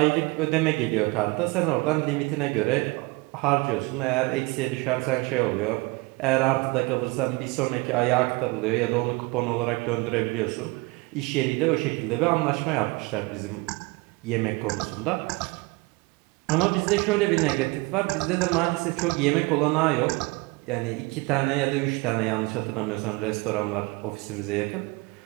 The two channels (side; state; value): left; quieter; 25.2 dB